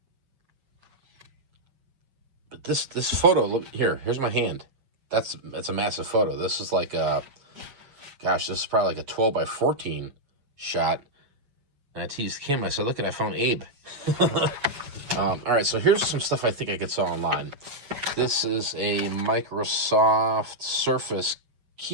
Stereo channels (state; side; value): late; left; 7.3 ms